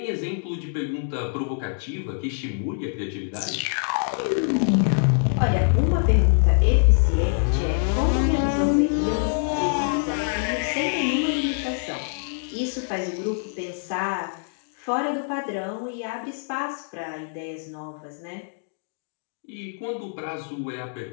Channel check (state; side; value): silent; right; digital silence